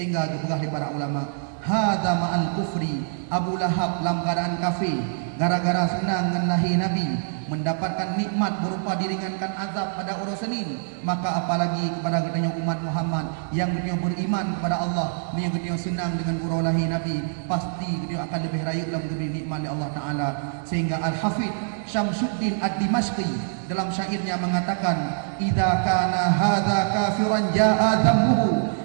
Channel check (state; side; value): silent; left; digital silence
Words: dipegah di para ulama, hadza ma'al kufri, Abu Lahab langgaran kafir gara-gara senang dengan lahir Nabi, mendapatkan nikmat berupa diringankan azab pada urusanin, maka apalagi kepada kita umat Muhammad yang kita beriman kepada Allah, yang kita senang dengan urus lahir Nabi, pasti kita akan lebih raya dalam diberi nikmat oleh Allah Ta'ala. Sehingga Al-Hafidh Syamsuddin Ad-Dimashqi dalam syairnya mengatakan, idza kana hadza kafiran jaa dhammuhu